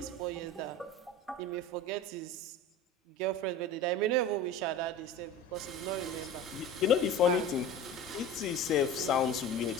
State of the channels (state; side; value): normal; both; correlation 0.34